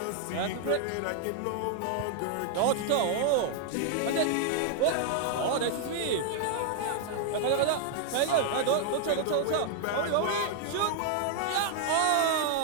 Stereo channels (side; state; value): both; different; correlation 0.00